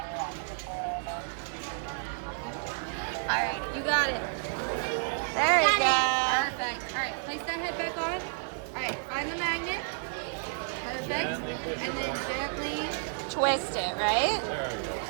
All right, you got it. There you go. Perfect. All right, place that head back on. All right, find the magnet. Perfect. Gently push it And then forward. gently. Twist it, right? There we go.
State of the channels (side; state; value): left; silent; digital silence